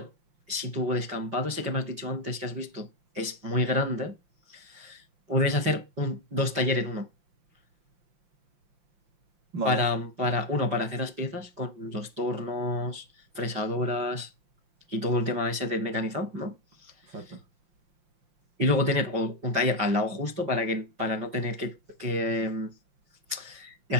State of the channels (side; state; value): left; late; 5.7 ms